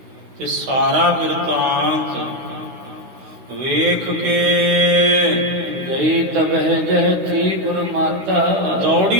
ਤੇ ਸਾਰਾ ਬਿਰਤਾਂਤ ਵੇਖ ਕੇ ਗਈ ਤਬਹਿ ਜਹ ਥੀ ਗੁਰ ਮਾਤਾ।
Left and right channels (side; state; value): left; late; 16 ms